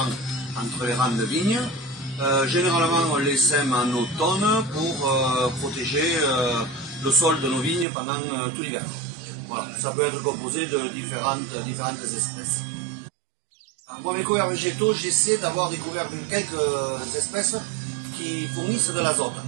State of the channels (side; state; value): left; drops out; at 7.9 s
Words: entre les rangs de vignes. Généralement, on les sème en automne pour protéger le sol de nos vignes pendant tout l'hiver. Voilà, ça peut être composé de différentes espèces. Moi, mes couverts végétaux, j'essaie d'avoir des couverts de quelques espèces qui fournissent de l'azote.